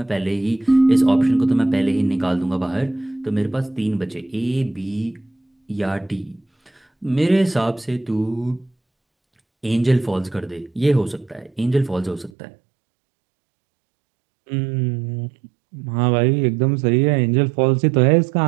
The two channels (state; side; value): drops out; left; at 12.3 s